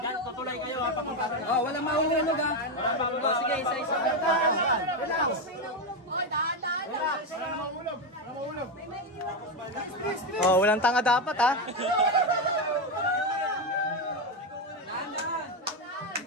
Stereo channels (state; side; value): normal; both; correlation 0.10